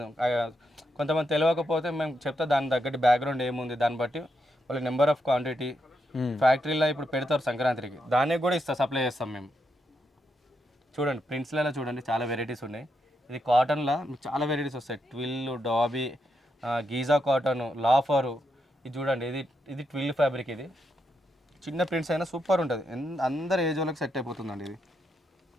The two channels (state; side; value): normal; both; correlation 0.82